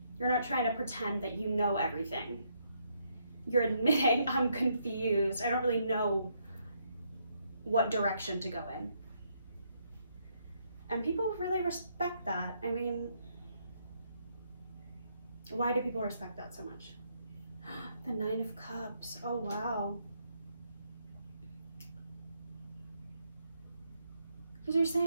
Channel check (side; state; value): both; inverted; correlation -0.74